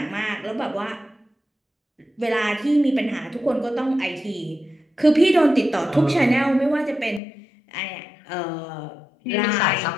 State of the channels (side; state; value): right; drops out; at 7.2 s